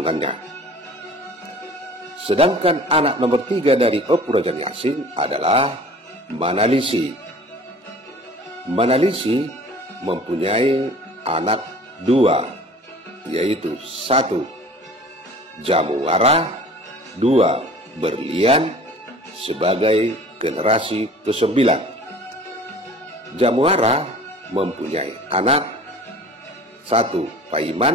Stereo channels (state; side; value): normal; both; correlation 0.45